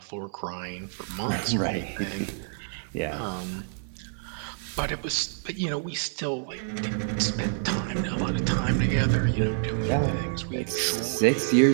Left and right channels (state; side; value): silent; left; 60 dB below the other